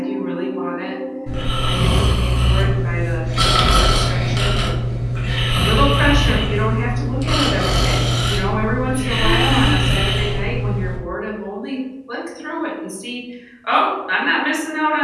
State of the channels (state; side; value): identical; both; correlation 1.00